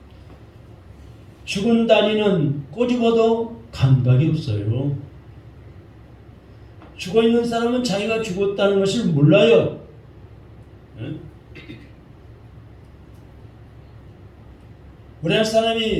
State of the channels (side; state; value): both; identical; correlation 1.00